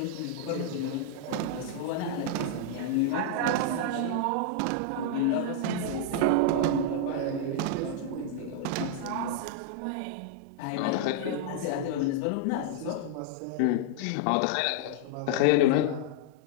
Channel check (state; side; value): different; both; correlation -0.01